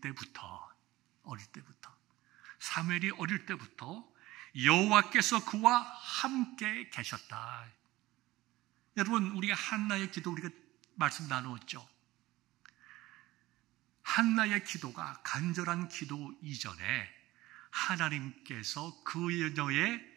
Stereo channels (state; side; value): quieter; left; 18.0 dB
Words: 여호와께서 그와 함께 계셨다. 여러분, 우리가 한나의 기도 우리가 말씀 나누었죠. 한나의 기도가 간절한 기도 이전에 하나님께서 그녀의